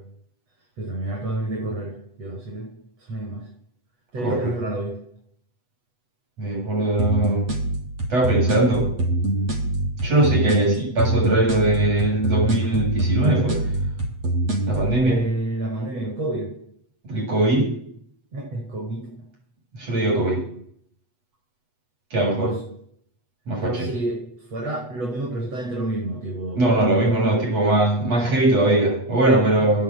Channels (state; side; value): late; left; 8.1 ms